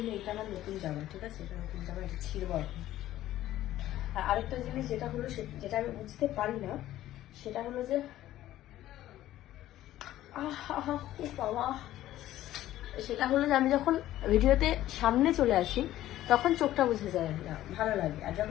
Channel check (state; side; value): quieter; right; 14.0 dB